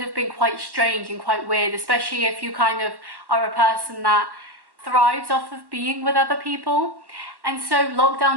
been quite strange and quite weird, especially if you kind of are a person that thrives off of being with other people. And so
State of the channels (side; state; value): left; late; 1.1 ms